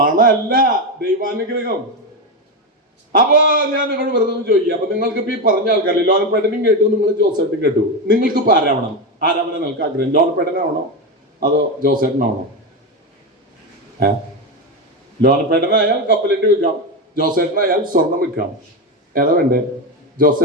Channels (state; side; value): normal; both; correlation 0.13